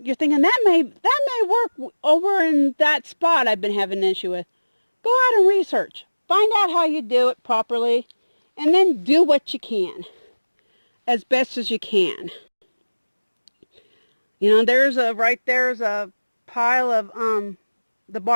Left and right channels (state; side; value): inverted; both; correlation -1.00